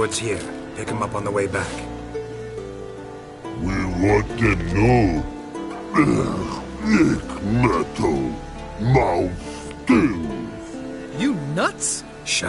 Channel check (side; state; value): both; identical; correlation 1.00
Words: here. Pick them up on the way back. We want to know. Nick metal. Mouth stings. You nuts?